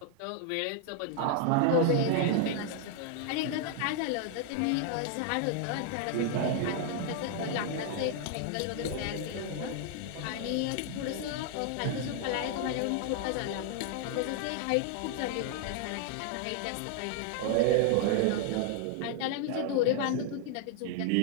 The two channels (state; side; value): different; both; correlation 0.00